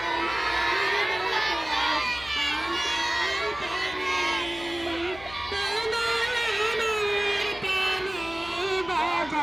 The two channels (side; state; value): left; noise; hum, 18 dB below the sound